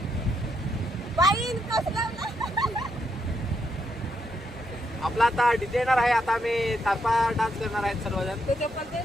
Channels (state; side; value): normal; both; correlation 0.78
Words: आपला आता डीजे येणार आहे. आता आम्ही तारपा डान्स करणार आहेत सर्वजण.